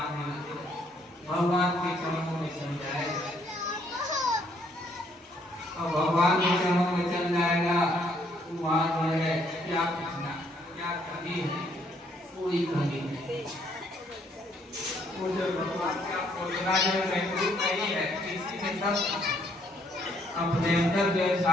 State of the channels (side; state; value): both; normal; correlation 0.68